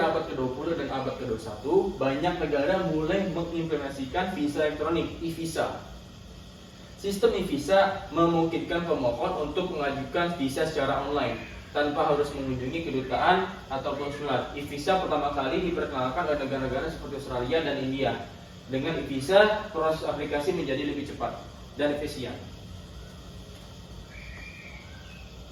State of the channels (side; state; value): both; identical; correlation 1.00